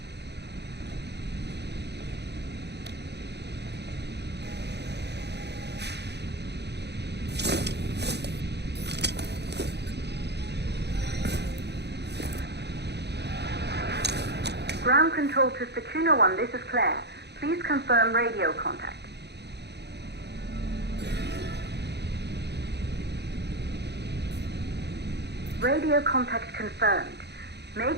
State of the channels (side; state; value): left; late; 0.49 ms